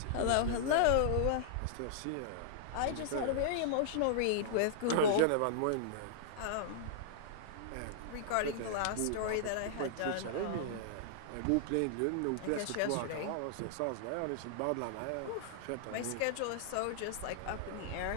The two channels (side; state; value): both; different; correlation -0.01